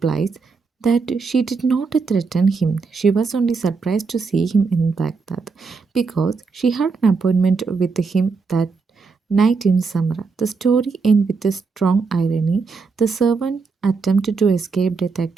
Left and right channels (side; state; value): left; quieter; 4.7 dB